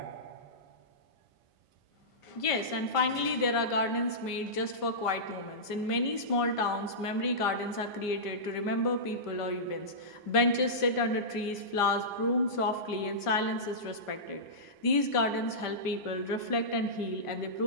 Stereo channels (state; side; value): late; right; 1.5 ms